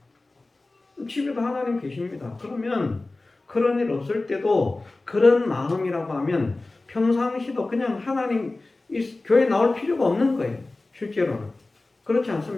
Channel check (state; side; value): quieter; right; 3.1 dB